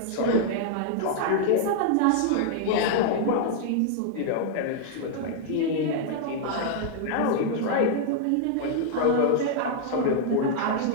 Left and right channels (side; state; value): both; different; correlation 0.00